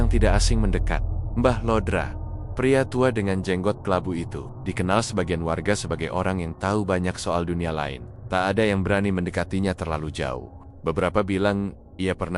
yang tidak asing mendekat. Mbah Lodra, pria tua dengan jenggot kelabu itu, dikenal sebagian warga sebagai orang yang tahu banyak soal dunia lain. Tak ada yang berani mendekatinya terlalu jauh. Beberapa bilang ia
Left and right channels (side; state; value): both; identical; correlation 1.00